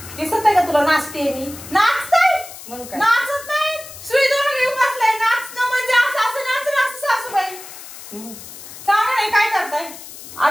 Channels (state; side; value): noise; left; hiss, 15 dB below the sound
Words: दिसत आहे का तुला नाचते मी? नाचताय? मग काय? नाचत नाही, सुई दोन घेऊन बसलाय. नाचणं म्हणजे असं नाचणं असं सासूबाई. सांगा नाही काय करताय?